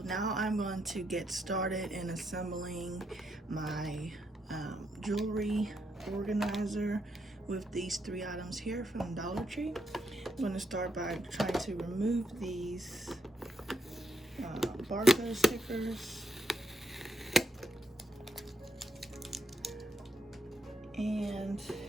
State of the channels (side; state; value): both; normal; correlation 0.79